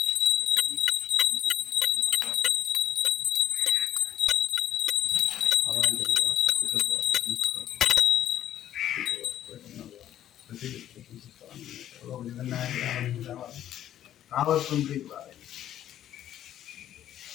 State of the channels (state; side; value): quieter; right; 11.5 dB